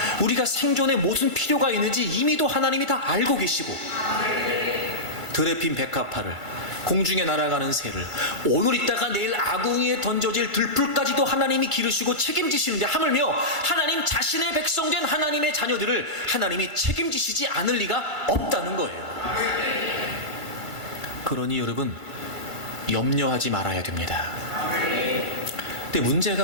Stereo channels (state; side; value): late; right; 1.5 ms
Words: 우리가 생존에 무슨 필요가 있는지 이미도 하나님이 다 알고 계시고, 들에 핀 백합화를, 공중에 날아가는 새를, 오늘 있다가 내일 아궁이에 던져질 들풀까지도 하나님이 기르시고 책임지시는데, 하물며 하나님 자신의 백성된 하나님의 자녀들을 하나님이 책임지시지 않을 리가 없다는 거예요. 그러니 여러분, 염려하지 말아야 됩니다. 근데